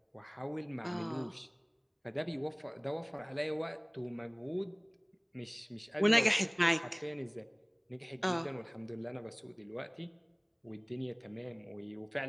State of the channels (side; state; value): both; identical; correlation 1.00